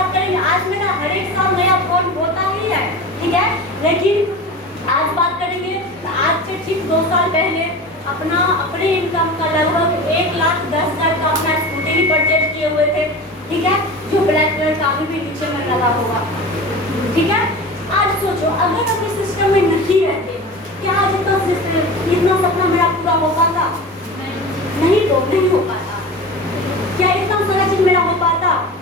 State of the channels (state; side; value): normal; both; correlation 0.32